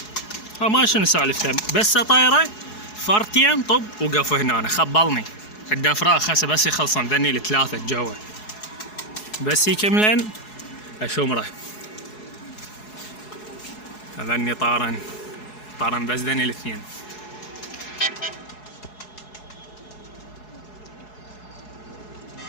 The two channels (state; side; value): late; right; 4.7 ms